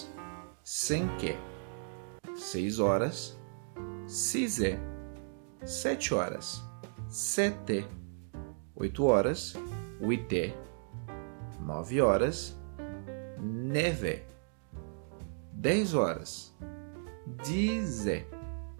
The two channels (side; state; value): left; silent; digital silence